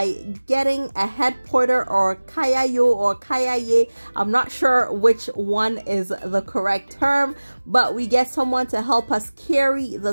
getting a head porter or kayayo or kayaye. I'm not sure which one is the correct term, but we get someone to help us carry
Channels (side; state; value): both; inverted; correlation -1.00